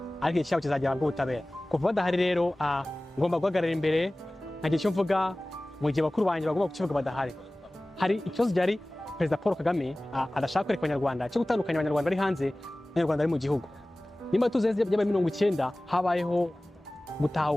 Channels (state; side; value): normal; both; correlation 0.98